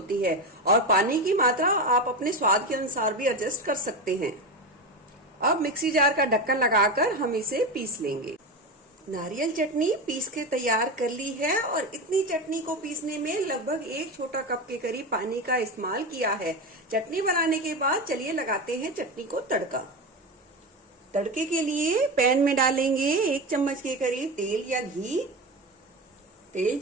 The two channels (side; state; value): both; normal; correlation 0.20